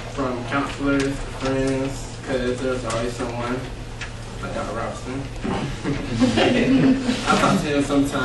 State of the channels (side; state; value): both; identical; correlation 1.00